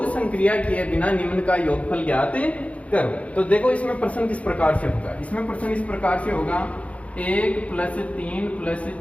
संक्रिया किए बिना निम्न का योगफल ज्ञात करो। तो देखो इसमें प्रश्न किस प्रकार से होगा। इसमें प्रश्न इस प्रकार से होगा 1 + 3 +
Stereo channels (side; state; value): right; late; 0.065 ms